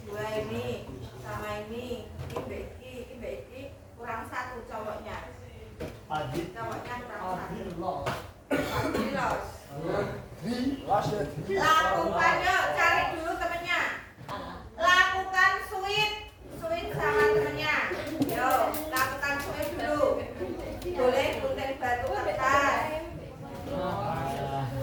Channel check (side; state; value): both; identical; correlation 1.00